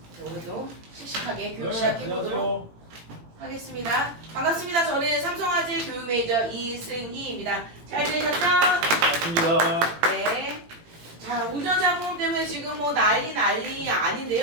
오늘도 씩씩하게 교육 시작해보도록 하겠습니다. 반갑습니다. 저는 삼성화재 교육 메이저 이승희입니다. 잘 지내셨죠? 반갑습니다. 네. 자, 운전자 보험 때문에 지금 뭐 난리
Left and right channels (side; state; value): left; late; 18 ms